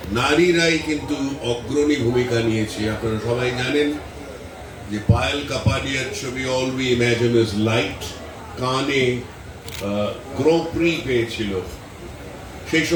নারীরাই কিন্তু অগ্রণী ভূমিকা নিয়েছে। আপনারা সবাই জানেন যে পায়েল কাপাডিয়ার ছবি all we imagine is light কানে গ্রো প্রি পেয়েছিল। সেই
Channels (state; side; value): identical; both; correlation 1.00